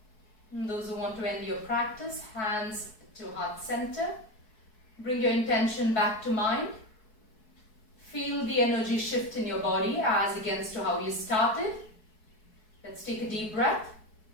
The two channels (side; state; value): right; late; 4.7 ms